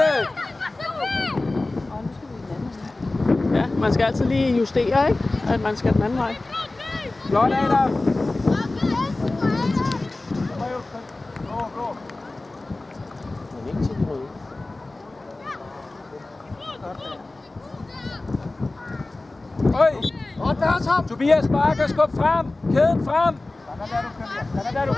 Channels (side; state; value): right; quieter; 3.0 dB